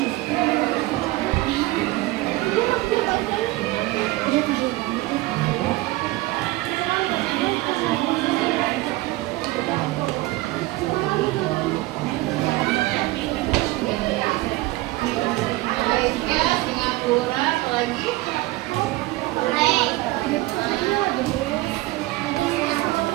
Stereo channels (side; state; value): left; quieter; 19.4 dB